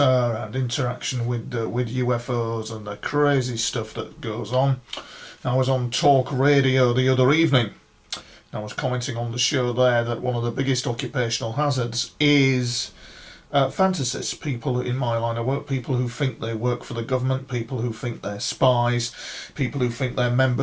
and interaction with UFOs and the crazy stuff that goes on. I was on talk radio the other evening. I was commenting on the show there that one of the biggest occupational hazards is fantasists, people in my line of work, people who think they work for the government, people who think they're spies, people who think they're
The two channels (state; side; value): identical; both; correlation 1.00